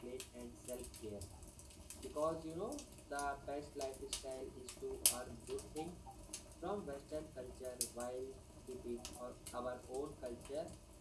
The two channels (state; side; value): identical; both; correlation 1.00